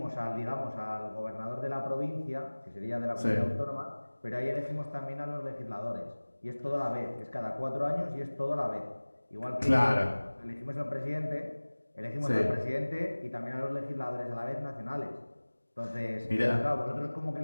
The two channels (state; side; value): inverted; both; correlation -1.00